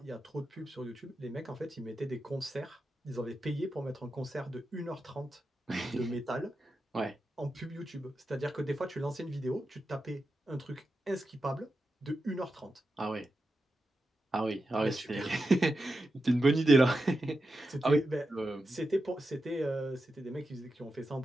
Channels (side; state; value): both; normal; correlation 0.89